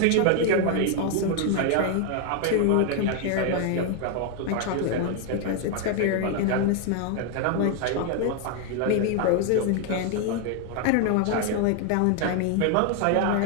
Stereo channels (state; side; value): different; both; correlation 0.01